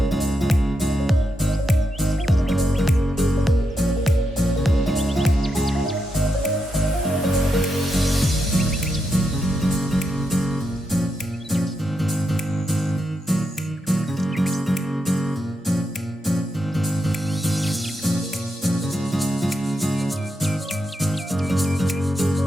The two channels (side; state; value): both; normal; correlation 0.84